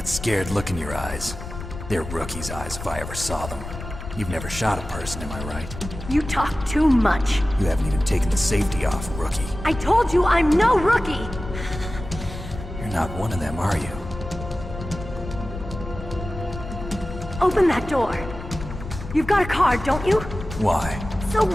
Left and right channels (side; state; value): left; noise; rumble, 10 dB below the sound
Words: scared look in your eyes. They're rookie's eyes if I ever saw them. You've never shot a person, am I right? You talk too much. You haven't even taken the safety off, rookie. I told you I'm no rookie! You're not one of them, are you? Open that door. You've got a card, don't you? Why? So